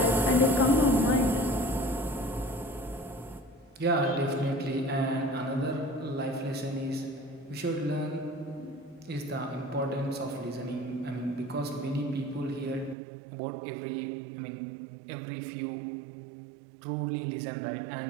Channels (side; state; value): left; drops out; at 13.0 s